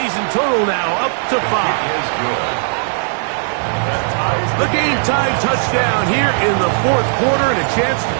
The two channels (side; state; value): left; silent; digital silence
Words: total now up to 5. The game-time touchdown here in the 4th quarter, and a chance to